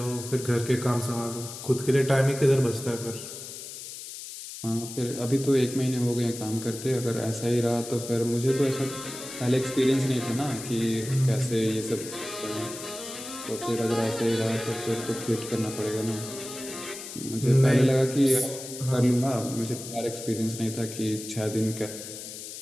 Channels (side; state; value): left; noise; hiss, 11 dB below the sound